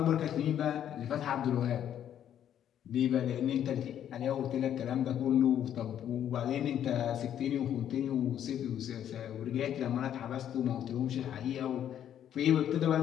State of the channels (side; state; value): right; quieter; 10.1 dB